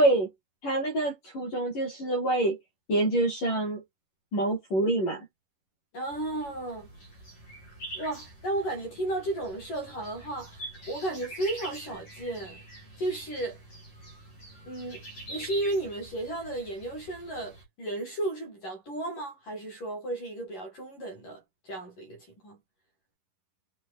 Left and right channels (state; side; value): late; right; 11 ms